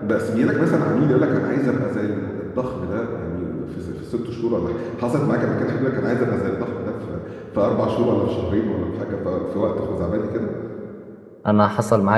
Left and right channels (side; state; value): both; identical; correlation 1.00